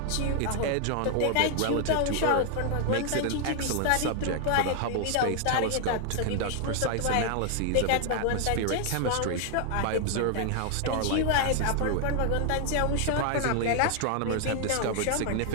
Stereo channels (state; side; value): different; both; correlation 0.00